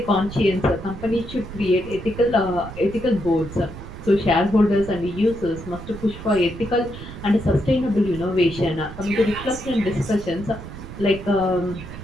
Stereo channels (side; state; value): right; noise; rumble, 12 dB below the sound